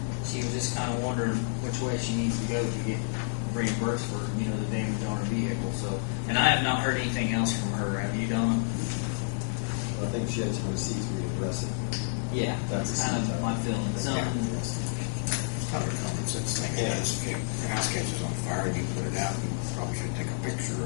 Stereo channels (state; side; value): silent; right; digital silence